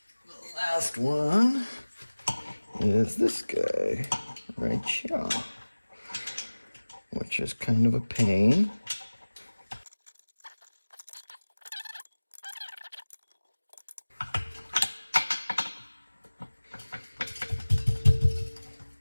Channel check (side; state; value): both; inverted; correlation -1.00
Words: last one is this guy right here, which is kind of a pain.